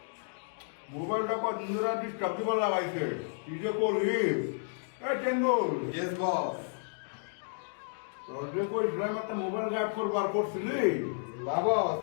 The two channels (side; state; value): right; silent; digital silence